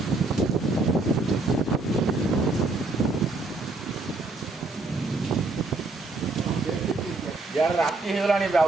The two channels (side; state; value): left; quieter; 3.3 dB